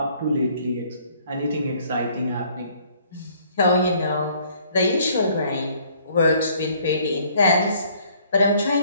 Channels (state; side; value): inverted; both; correlation -0.61